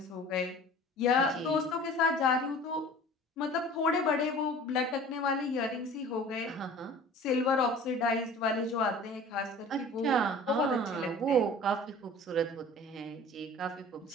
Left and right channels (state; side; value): normal; both; correlation 0.44